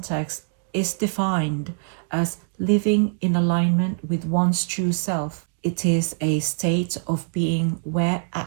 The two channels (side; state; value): left; silent; digital silence